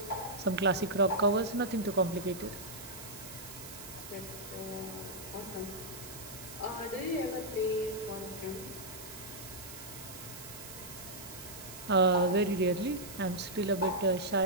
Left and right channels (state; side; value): noise; right; hiss, 13 dB below the sound